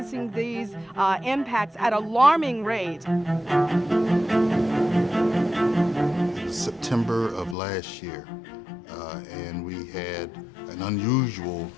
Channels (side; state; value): right; drops out; at 7.6 s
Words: these impacts at alarming rates. September of last year, and we had an unusual